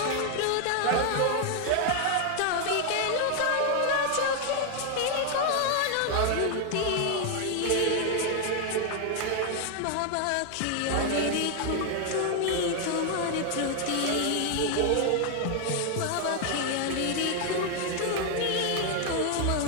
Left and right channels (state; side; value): different; both; correlation 0.00